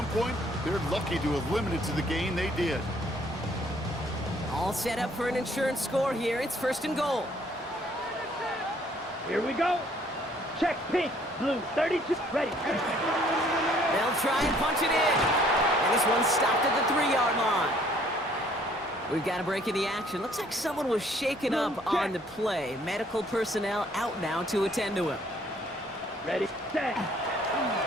point, they're lucky to have limited to the gain they did. All set up for an insurance score here. It's 1st and goal. Here we go. Check. Pink. Blue. 32. Ready. They'll try and punch it in. And this one's stopped at the 3-yard line. We've got a break in the action. Looks like someone was shaken up on the play. Medical personnel out now to attend to him. Ready. Set.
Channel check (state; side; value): normal; both; correlation 0.61